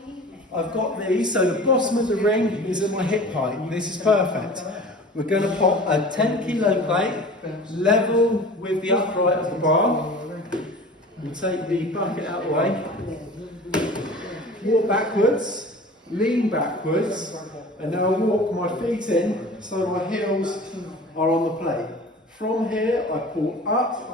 I've got these, so the bottom of the ring is at my hip height. This is perfect. We're going to pop a 10 kilo plate, level with the upright of the bar. We'll take the bucket out of the way. Walk backwards, lean backwards, and now I'll walk my feet in so my heels are on the plate. From here, I pull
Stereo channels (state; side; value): normal; both; correlation 0.40